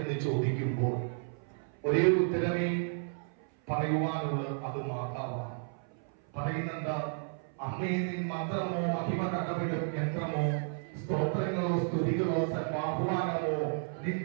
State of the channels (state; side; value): silent; left; 56 dB below the other